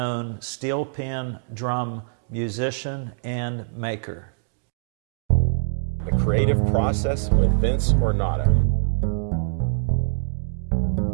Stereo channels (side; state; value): left; silent; digital silence